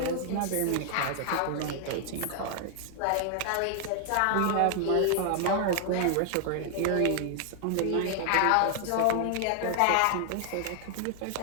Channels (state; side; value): different; both; correlation 0.00